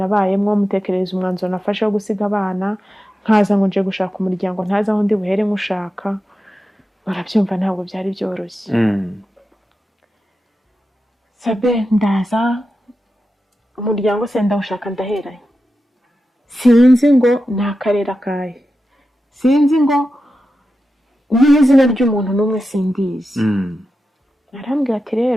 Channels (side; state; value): both; normal; correlation 0.91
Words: mutekereza umwanzuro nafashe wo gusiga abana, nkaza ngo nje gushaka umuryango, ntaza aho ndi buhere nkushaka. Barabyumva ntabwo byari byoroshye. Sabe ndaza umuryango se ndawushaka ndaheranye, sinzi ngo nakarera kahe, sinzi ngo n'izina ry'umuntu n'umwe sindizi. Arambwira ati